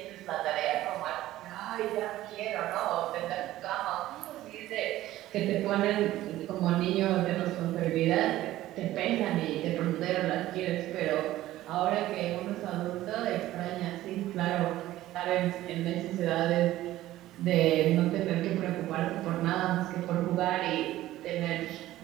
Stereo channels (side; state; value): left; quieter; 15.1 dB